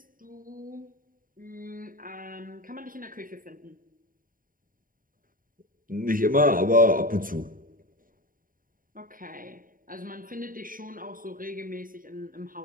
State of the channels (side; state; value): left; late; 0.40 ms